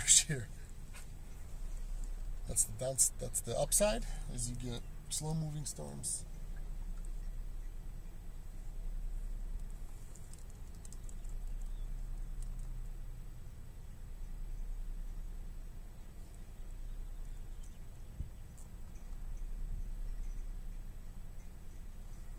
shear. That's the upside, is you get slow moving storms.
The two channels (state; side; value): identical; both; correlation 1.00